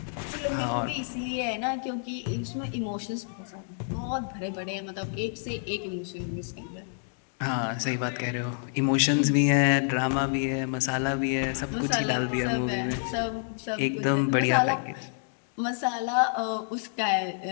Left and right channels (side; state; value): right; silent; 59 dB below the other